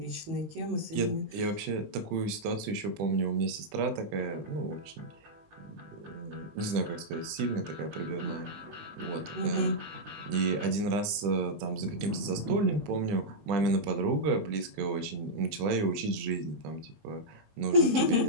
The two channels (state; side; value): late; left; 20 ms